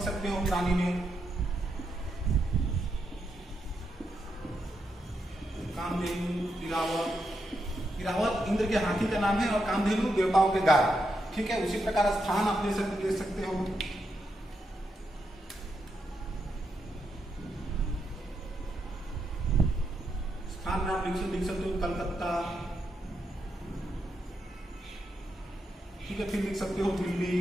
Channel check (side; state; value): both; normal; correlation 0.82